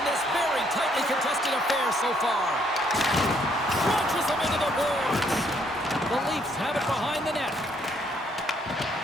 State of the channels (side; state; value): both; normal; correlation 0.69